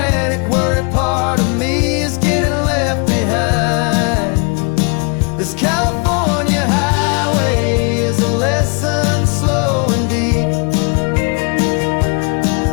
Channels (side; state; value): right; quieter; 34.6 dB